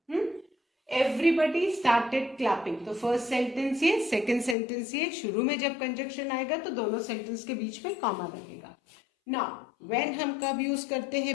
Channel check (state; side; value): drops out; right; at 4.5 s